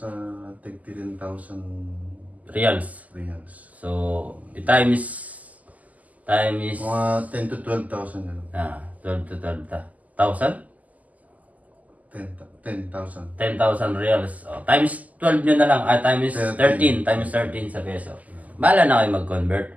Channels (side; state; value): left; late; 0.076 ms